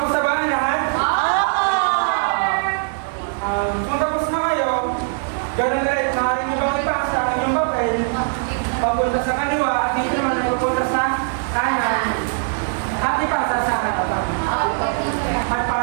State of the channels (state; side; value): silent; left; digital silence